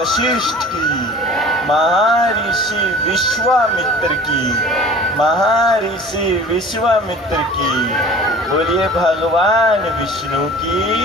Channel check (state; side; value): normal; both; correlation 0.43